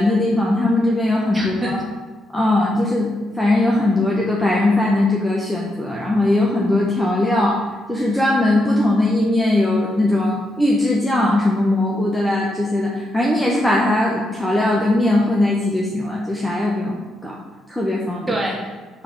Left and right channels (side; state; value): both; normal; correlation 0.83